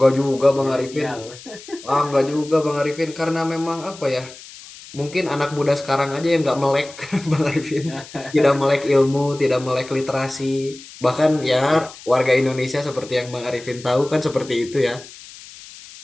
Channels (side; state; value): left; noise; hiss, 18 dB below the sound